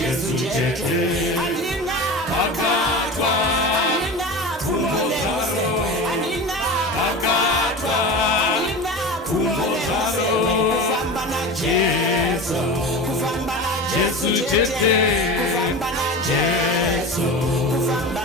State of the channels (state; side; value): normal; both; correlation 0.30